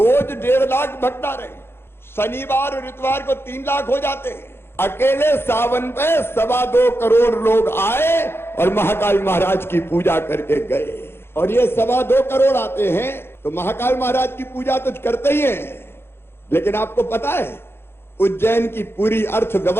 1.5 लाख भक्त आ रहे हैं, शनिवार और इतवार को 3 लाख हो जाते हैं। अकेले सावन पे 2.25 करोड़ लोग आए और महाकाल महाराज की पूजा करके गए। और ये 2.25 करोड़ आते हैं तो महाकाल महाराज की पूजा तो करते ही हैं, लेकिन आपको पता है उज्जैन की पूरी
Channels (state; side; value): late; right; 0.11 ms